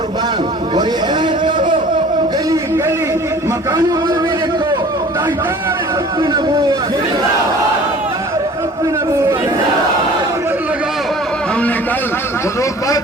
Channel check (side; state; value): both; normal; correlation 0.47